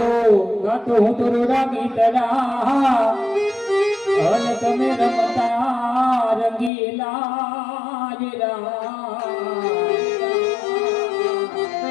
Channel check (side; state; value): right; drops out; at 6.7 s